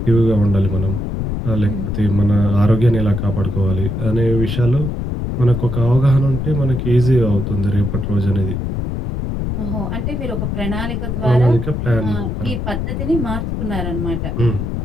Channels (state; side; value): noise; left; rumble, 3 dB below the sound